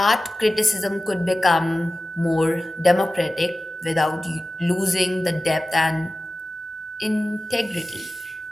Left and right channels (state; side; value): normal; both; correlation 0.95